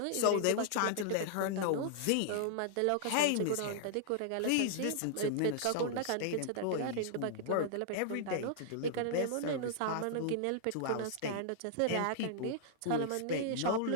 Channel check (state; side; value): different; both; correlation -0.01